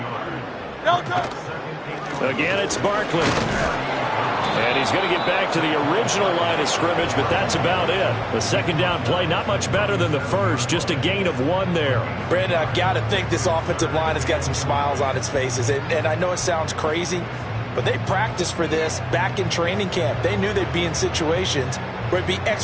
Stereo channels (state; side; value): identical; both; correlation 1.00